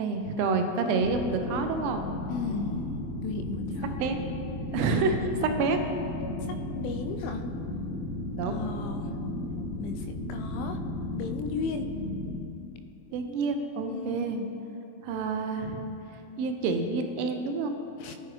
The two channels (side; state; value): right; late; 24 ms